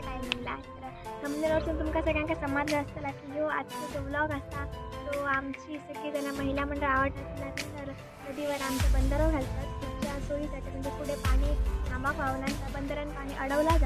टायमिंगला. तर थंबनेलवरून तुमका सगळ्यांका समजलं असतं की ह्यो आजचा जो व्लॉग असा तो आमची सगळीजण महिला मंडळ आवडतात. तर नदीवर आमचं बंदरं घालतात पुढच्या सोयीसाठी, म्हणजे पुढे पाणी थांबा व्हावं त्या बंदरानं पाणी अडवला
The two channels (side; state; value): both; identical; correlation 1.00